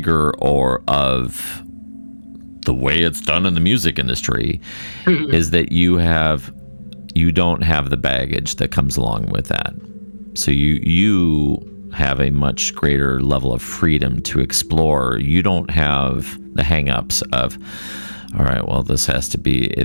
of the way it's done in the music industry is that you don't have the baggage that comes along with that. So you have a much greater level of freedom to explore. You don't have the hang-ups of, all right, well, this has to be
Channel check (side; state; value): both; inverted; correlation -1.00